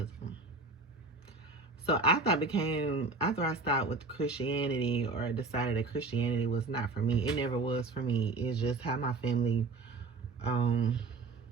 So after I started with Christianity, or decided that Christianity was not for me, it never was for me. It's just how my family is.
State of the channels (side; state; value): left; quieter; 3.8 dB